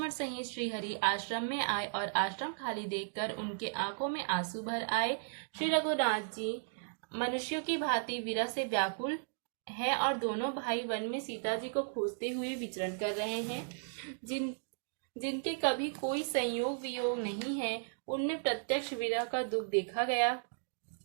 सहित श्री हरि आश्रम में आए और आश्रम खाली देखकर उनके आंखों में आंसू भर आए। श्री रघुनाथ जी मनुष्यों की भांति विरह से व्याकुल है और दोनों भाई वन में सीता जी को खोजते हुए विचरण कर रहे हैं। जिनके कभी कोई संयोग वियोग नहीं है, उनमें प्रत्यक्ष विरह का दुख देखा गया।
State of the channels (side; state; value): left; silent; digital silence